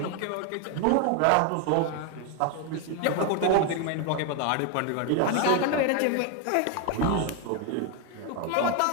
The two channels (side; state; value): both; different; correlation 0.01